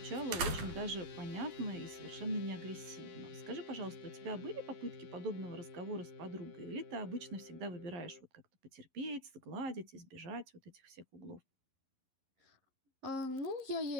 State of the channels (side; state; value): left; late; 11 ms